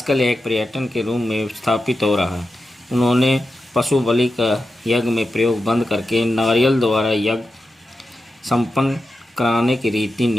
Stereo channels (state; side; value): normal; both; correlation 0.90